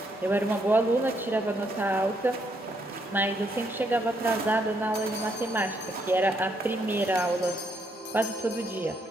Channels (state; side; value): normal; both; correlation 0.74